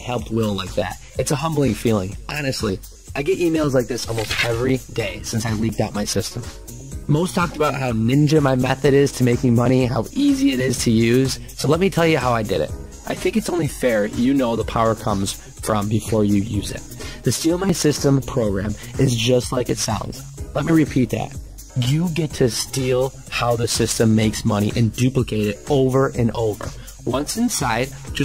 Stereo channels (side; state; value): both; identical; correlation 1.00